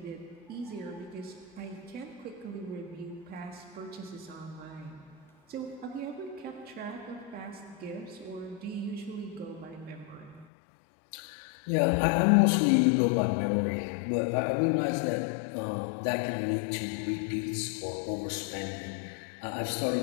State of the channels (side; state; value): right; drops out; at 10.5 s